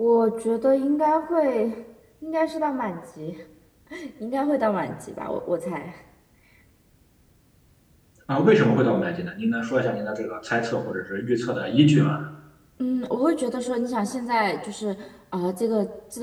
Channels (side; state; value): both; identical; correlation 1.00